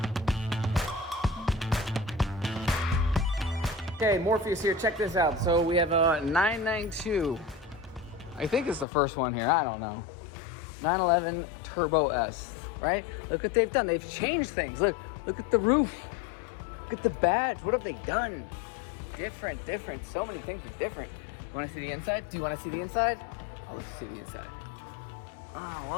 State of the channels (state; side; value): drops out; right; at 8.8 s